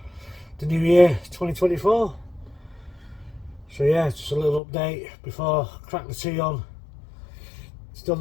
the new year 2024. So yeah, just a little update before I crack the tea on. Still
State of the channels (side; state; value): right; drops out; at 4.6 s